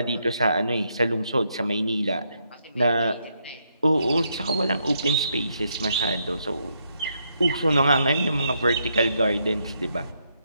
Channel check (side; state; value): both; inverted; correlation -0.78